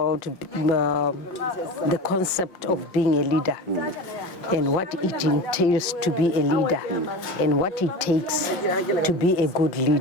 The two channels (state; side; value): late; right; 5.6 ms